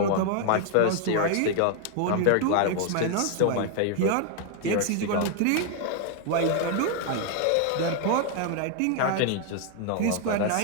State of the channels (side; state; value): both; different; correlation 0.00